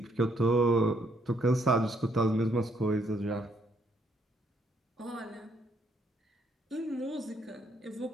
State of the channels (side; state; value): both; normal; correlation 0.70